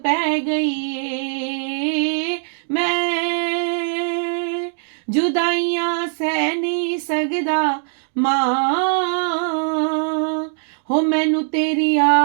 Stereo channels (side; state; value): left; silent; digital silence